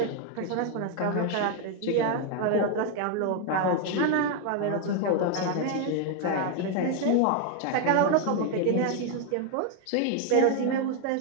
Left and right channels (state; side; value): different; both; correlation 0.01